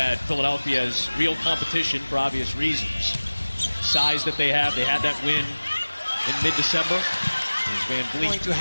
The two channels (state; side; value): inverted; both; correlation -1.00